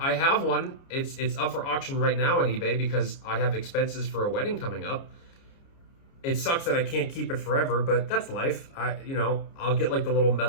have one. It's up for auction right now on eBay because I have expenses for a wedding coming up. It sucks that I can't keep it forever, but that's life. I'll get like the little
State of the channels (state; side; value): late; right; 29 ms